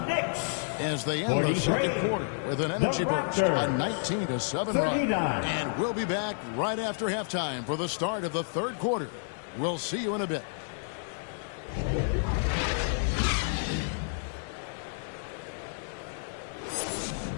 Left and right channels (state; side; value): silent; right; digital silence